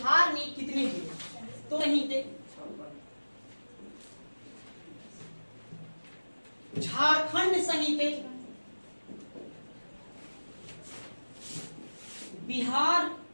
में कितने जिले, तो नहीं थे, झारखंड सहित बिहार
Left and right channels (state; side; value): inverted; both; correlation -1.00